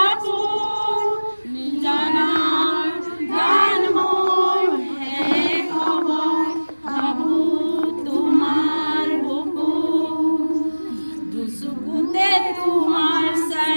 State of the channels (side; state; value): both; inverted; correlation -1.00